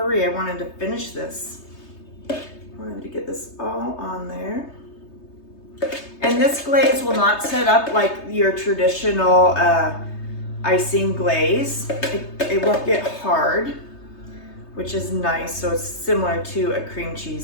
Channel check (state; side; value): late; right; 3.3 ms